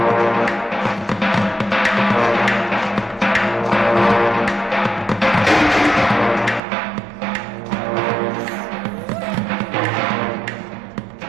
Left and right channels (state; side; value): drops out; left; at 6.6 s